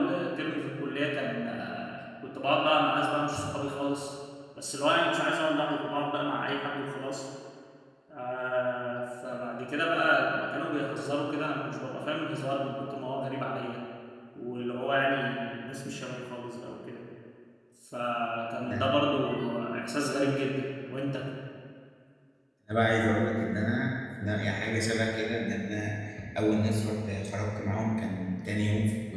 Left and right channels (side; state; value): both; identical; correlation 1.00